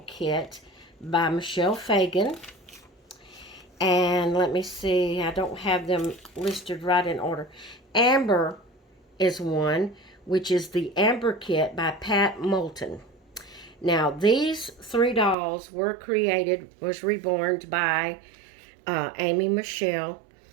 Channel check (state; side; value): drops out; left; at 15.4 s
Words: Kit by Michelle Fagan. And let me see, I don't have them listed right in order. Amber is one, which is the Amber Kit by Pat Moulton. Now, these 3 dolls was reborn by Amy Michelle.